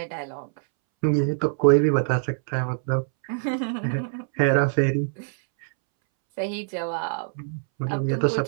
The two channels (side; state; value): left; silent; 62 dB below the other